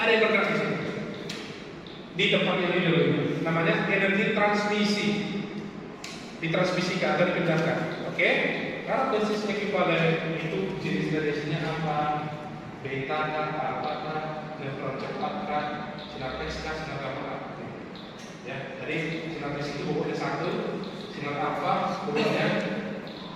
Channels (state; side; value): identical; both; correlation 1.00